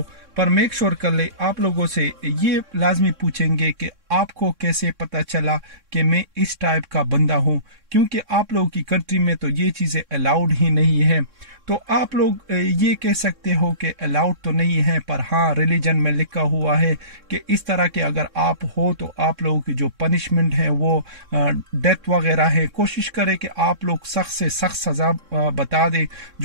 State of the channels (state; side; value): late; left; 3.6 ms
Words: पर मेक श्योर कर ले आप लोगों से ये लाजमी पूछेंगे कि आपको कैसे पता चला कि मैं इस टाइप का बंदा हूँ, क्योंकि आप लोगों की कंट्री में तो ये चीज़ें अलाउड ही नहीं है। तो आप लोग ये कह सकते हो कि अलाउड तो नहीं है, पर हाँ रिलीजन में लिखा हुआ है कि इस तरह के अगर आप हो तो आप लोगों की जो पनिशमेंट है वो डेथ वगैरह है। कोशिश करें कि आप लोग सख्त से सख्त सज़ा बता दें